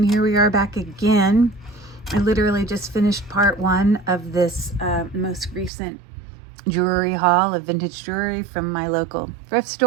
here we are back again. I literally just finished part one of this most recent jewelry haul of vintage jewelry from my local thrift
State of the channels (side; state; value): left; drops out; at 5.7 s